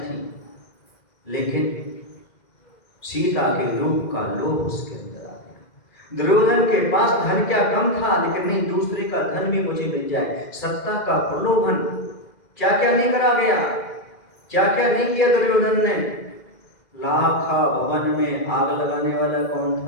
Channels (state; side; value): late; right; 2.1 ms